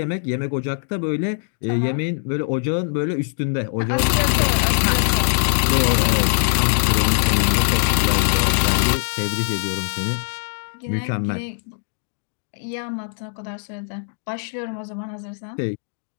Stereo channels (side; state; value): right; silent; digital silence